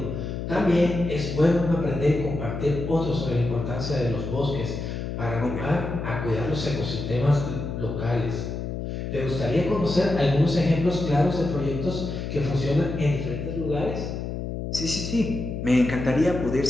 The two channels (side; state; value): left; noise; hum, 5 dB below the sound